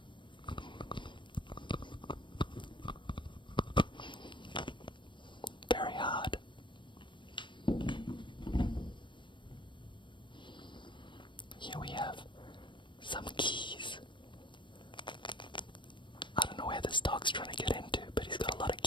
Very hard. Here we have some keys. I don't know where this dog's trying to get into, but he's got a lot of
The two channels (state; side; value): late; right; 0.23 ms